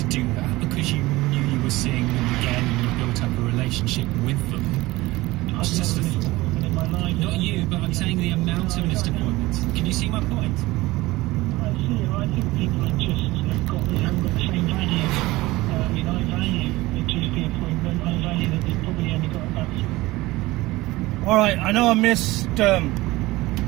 do that because you knew you were seeing them again and you built up a relationship with them? I've never missed an appointment in my life. Not you, but I'm saying the amount of missed appointments. Can you see my point? I see. I think people haven't got the same value. I mean, I value the GP appointment. I value that they've probably only got about. All right, I know I missed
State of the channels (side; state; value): left; quieter; 19.3 dB